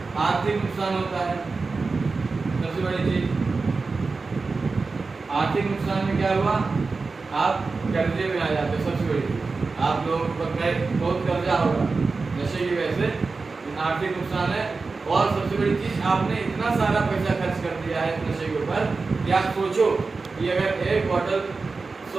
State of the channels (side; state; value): left; quieter; 4.1 dB